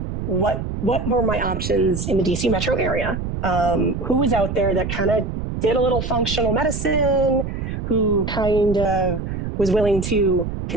what were my options in the DC metro area. who was out there that kind of did a little functional medicine, who kind of was willing to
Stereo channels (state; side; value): noise; right; rumble, 4 dB below the sound